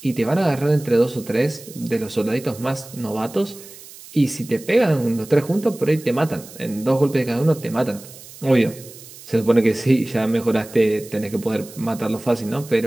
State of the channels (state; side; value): noise; right; hiss, 18 dB below the sound